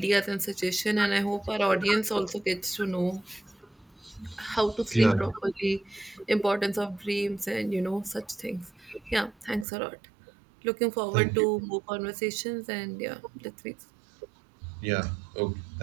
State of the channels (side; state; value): left; drops out; at 9.7 s